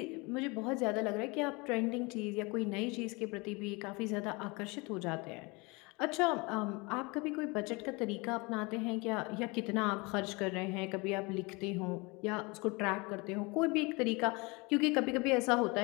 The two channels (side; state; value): right; quieter; 26.9 dB